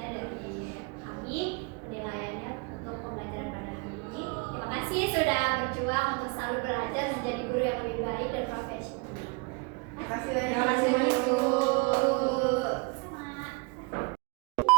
dari kami penilaiannya untuk pembelajaran pada hari ini. Terima kasih sudah berjuang untuk selalu belajar menjadi guru yang lebih baik dan profesional. Terima kasih banyak Bu. Sama.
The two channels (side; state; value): left; quieter; 30.7 dB